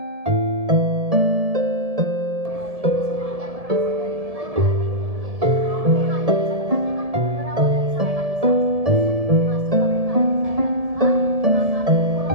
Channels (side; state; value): left; late; 1.7 ms